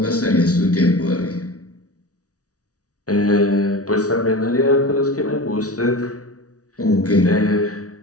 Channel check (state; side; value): late; right; 0.67 ms